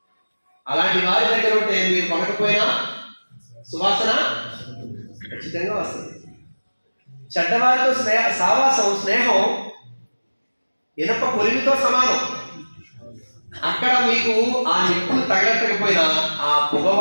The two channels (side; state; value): both; inverted; correlation -1.00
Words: అలాంటి వారి దగ్గర ఉంటే మీరు కొనకపోయినా సువాసన ఖచ్చితంగా వస్తుంది. చెడ్డవారితో స్నేహం ఇనప కొలిమితో సమానం. అక్కడ మీకు ఆ నిప్పులు తగలట్టకపోయినా ఆ పొగ